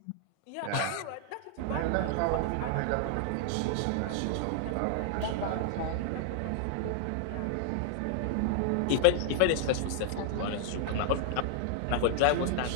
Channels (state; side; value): different; both; correlation 0.00